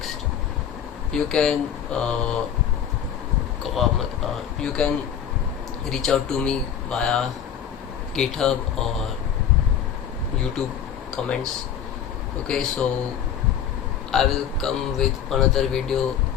you can reach out to me via GitHub or YouTube comments. Okay, so I will come with another video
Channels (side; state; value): right; quieter; 8.9 dB